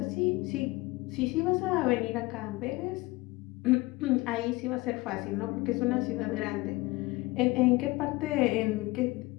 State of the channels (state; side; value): quieter; right; 21.7 dB